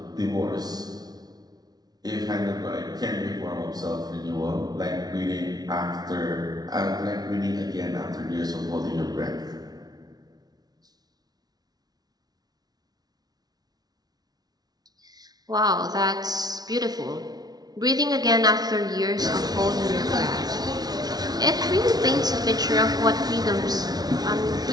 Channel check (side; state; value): left; late; 0.19 ms